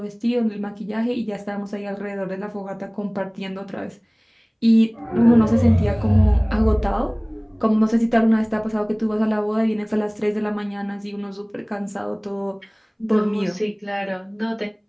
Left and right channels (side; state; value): both; identical; correlation 1.00